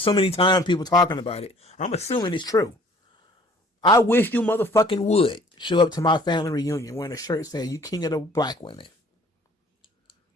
many times, people talking about it. I'm assuming it's true. I wish you motherfucking would show up to my family reunion wearing a shirt saying you king of the black women.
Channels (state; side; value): normal; both; correlation 0.54